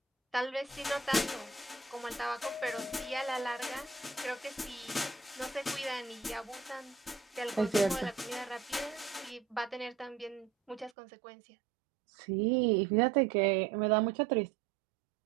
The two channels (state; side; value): drops out; left; at 10.9 s